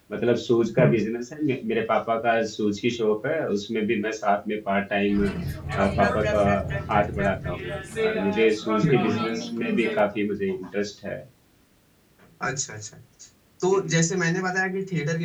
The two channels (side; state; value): both; identical; correlation 1.00